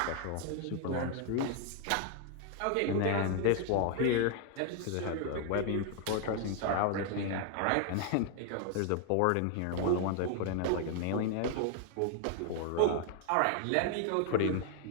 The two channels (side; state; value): both; different; correlation 0.00